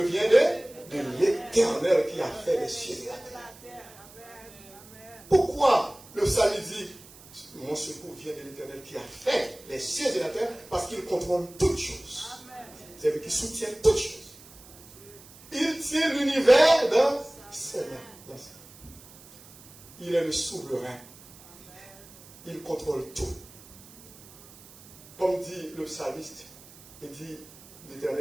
vient de l'Éternel qui a fait les cieux et la terre. Pourquoi le psalmiste dit, mon secours vient de l'Éternel qui a fait les cieux et la terre? Parce qu'il contrôle toutes choses. C'est lui qui soutient toutes choses. Il tient l'univers dans ses mains. Il est le souverain. Il contrôle tout. Comme dit le psalmiste, il dit,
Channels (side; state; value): right; noise; hiss, 21 dB below the sound